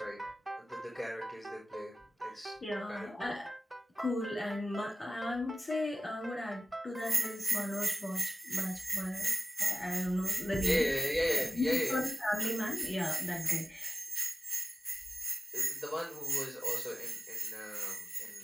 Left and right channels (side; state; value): both; normal; correlation 0.95